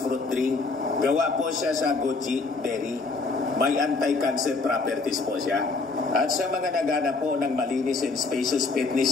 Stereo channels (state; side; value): quieter; right; 3.9 dB